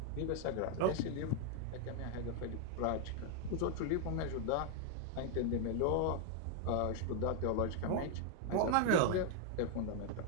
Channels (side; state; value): both; different; correlation 0.00